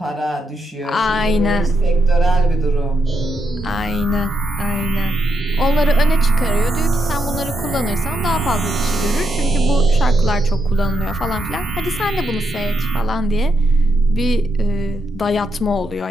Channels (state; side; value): normal; both; correlation 0.81